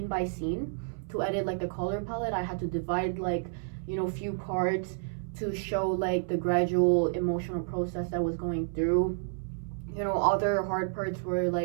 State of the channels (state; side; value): silent; left; 58 dB below the other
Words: by scene to edit like the color palette. I had to divide like, you know, few parts to show like the gradual emotional process that was going through. You know, other hard parts were